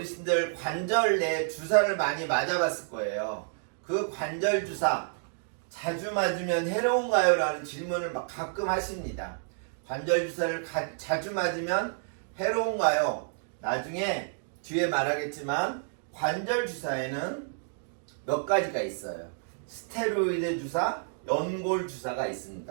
관절 내 주사를 많이 맞아봤을 거예요. 그 관절 주사 자주 맞으면 해로운가요? 라는 질문을 막 가끔 하십니다. 관절 주사를 자주 맞으면 해로운가요? 나중에 뒤에 말하겠지만 관절 주사에는 몇 가지가 있어요. 스테로이드 주사, 연골 주사가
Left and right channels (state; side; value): silent; left; digital silence